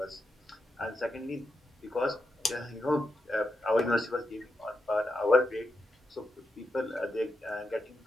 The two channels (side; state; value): both; normal; correlation 0.86